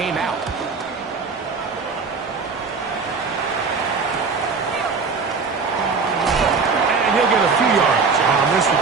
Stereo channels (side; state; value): left; quieter; 4.8 dB